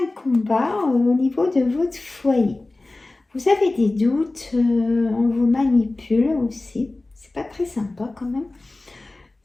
un combat au niveau de votre foyer. Vous avez des doutes, on vous manipule aussi. C'est pas très sympa quand même.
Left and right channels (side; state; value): right; quieter; 3.0 dB